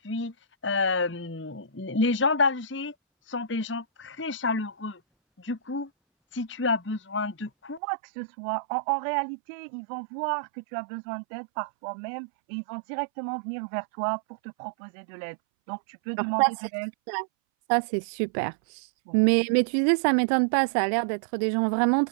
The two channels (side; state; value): left; drops out; at 7.8 s